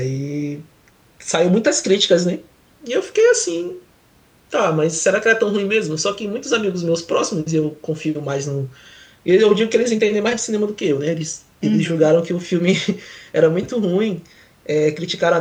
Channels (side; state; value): both; identical; correlation 1.00